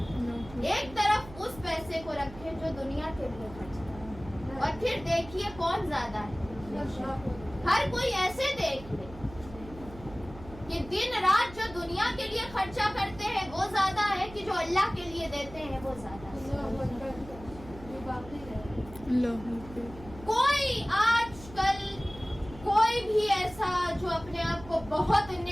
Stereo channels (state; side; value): noise; right; hum, 16 dB below the sound